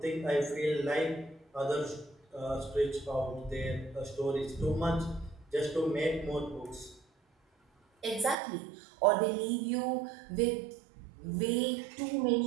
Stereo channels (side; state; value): left; drops out; at 8.3 s